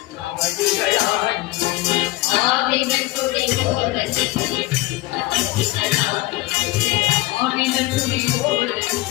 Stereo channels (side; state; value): right; quieter; 19.7 dB